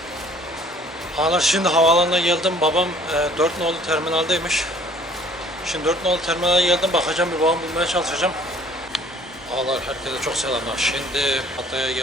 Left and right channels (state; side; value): normal; both; correlation 0.54